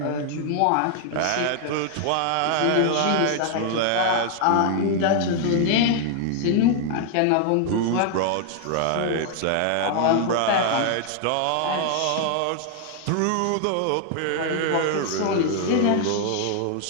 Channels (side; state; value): both; different; correlation 0.00